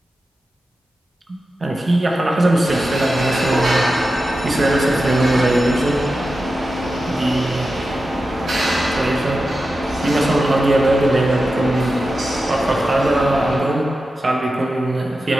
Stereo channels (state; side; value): normal; both; correlation 0.91